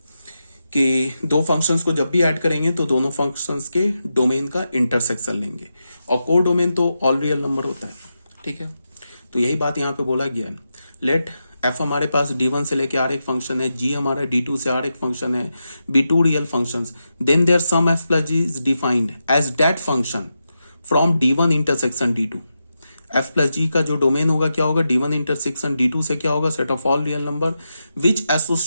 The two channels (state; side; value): inverted; both; correlation -0.88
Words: कि दो फंक्शंस को जब भी ऐड करेंगे तो दोनों फंक्शंस के डोमेन का इंटरसेक्शन लेंगे और को डोमेन तो ऑल रियल नंबर होता है, ठीक है। तो यही बात यहाँ पे बोला गया है। लेट f हमारे पास d1 से लेके r एक फंक्शन है, g हमारा d2 से r एक फंक्शन है, b2 real functions, then their sum f plus g is defined as that function from d1 intersection d2। f plus g का जो डोमेन होगा क्या होगा, d1 इंटरसेक्शन d2 से क्या होगा, set of all real number which